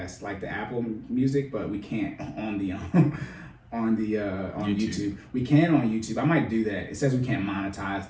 like the Apple Music, but we can't on the. On YouTube. We can on YouTube. I might do that. It says we can't monetize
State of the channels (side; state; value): both; identical; correlation 1.00